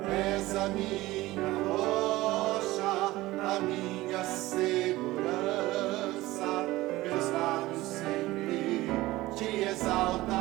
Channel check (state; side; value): quieter; left; 18.3 dB